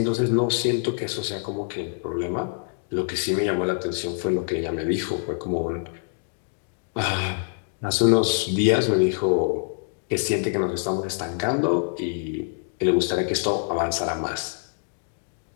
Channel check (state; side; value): silent; right; 61 dB below the other